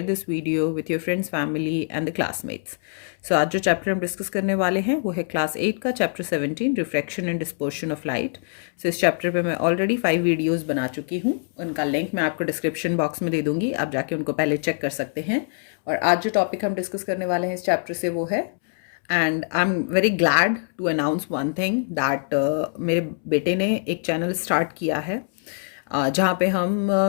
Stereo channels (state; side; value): silent; right; 63 dB below the other